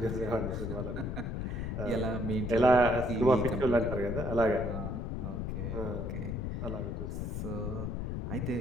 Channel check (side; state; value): left; noise; rumble, 3 dB below the sound